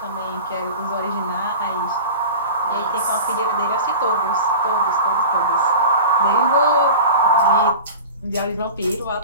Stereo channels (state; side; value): inverted; both; correlation -0.34